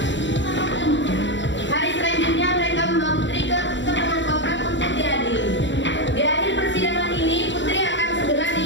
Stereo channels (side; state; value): right; late; 0.54 ms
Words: Hari selanjutnya mereka membawa Putri ke tengah kota untuk diadili. Di akhir persidangan ini, Putri akan segera